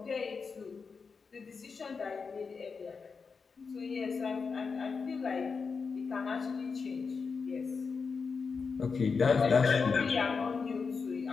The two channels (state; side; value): quieter; right; 5.2 dB